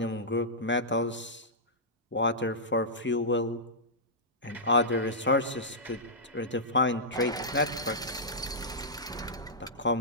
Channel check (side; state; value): both; normal; correlation -0.14